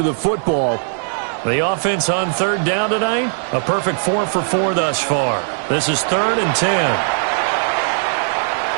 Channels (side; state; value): left; silent; 67 dB below the other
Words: the football. The offense on 3rd down tonight, a perfect 4 for 4 thus far. This is 3rd and 10.